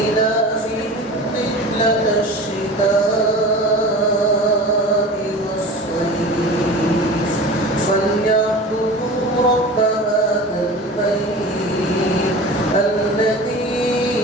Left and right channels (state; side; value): normal; both; correlation 0.35